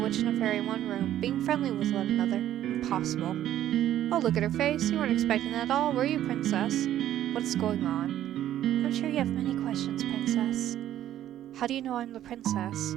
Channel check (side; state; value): left; quieter; 12.1 dB